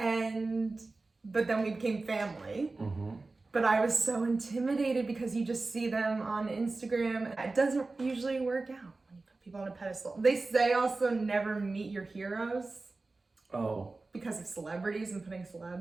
then we became family. Mm-hmm. But I was so intimidated because you just see them on Instagram. It doesn't usually work out when you put people on a pedestal. They say also never meet your heroes. Oh. Because of celebrities and putting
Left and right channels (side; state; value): left; quieter; 3.5 dB